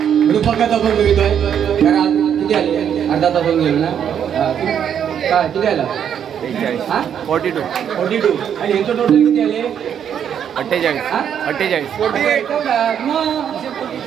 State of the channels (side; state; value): left; quieter; 8.7 dB